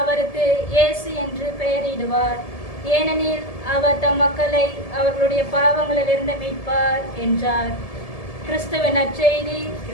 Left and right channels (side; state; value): right; late; 1.7 ms